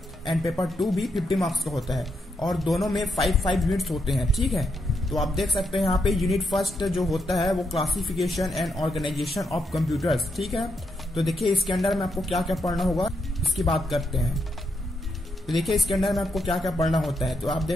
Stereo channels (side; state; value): both; normal; correlation 0.81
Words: एंड पेपर 2 भी 50 मार्क्स का होता है और दोनों में 5 यूनिट्स होते हैं। ठीक है, तो आप देख सकते हैं यहाँ पे यूनिट फर्स्ट जो होता है वो classification and organisation of computers. ठीक है, तो देखिए इसके अंदर में आपको क्या क्या पढ़ना होगा इसकी बात करते हैं। तो देखिए इसके अंदर में आपको क्या क्या पढ़ना होता है, तो आप